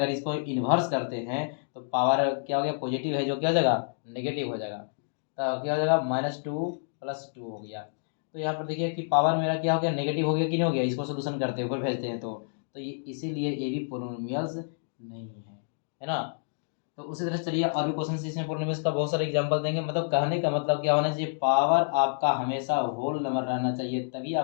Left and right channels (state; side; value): silent; right; digital silence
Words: इसको इन्वर्स करते हैं तो पावर क्या हो गया, पॉजिटिव है जो क्या हो जाएगा, नेगेटिव हो जाएगा, तो क्या हो जाएगा -2 + 2 हो गया। तो यहाँ पर देखिए कि पावर मेरा क्या हो गया, नेगेटिव हो गया कि नहीं हो गया, इसको सोल्यूशन करते हैं ऊपर भेजते हैं तो ये इसीलिए ये भी पोलिनोमियल्स नहीं है ना। तो उसी तरह चलिए और भी क्वेश्चन इसमें पोलिनोमियल्स का बहुत सारे एग्जांपल देंगे। मतलब कहने का मतलब क्या होना चाहिए, पावर आपका हमेशा होल नंबर रहना चाहिए, तभी